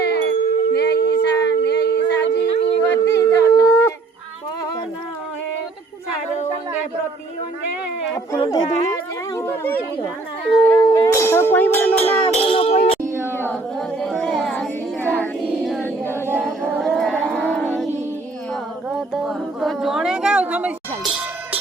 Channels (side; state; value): left; quieter; 3.5 dB